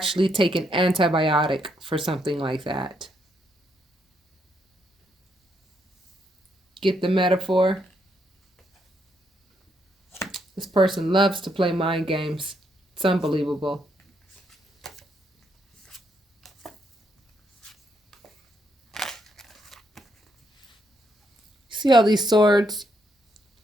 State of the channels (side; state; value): both; normal; correlation 0.76